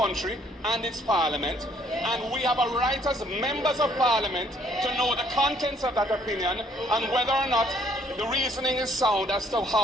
and its Parliament. And we have a right as members of Parliament to know the contents of that opinion and whether or not the reasoning is sound as to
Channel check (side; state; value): both; normal; correlation 0.64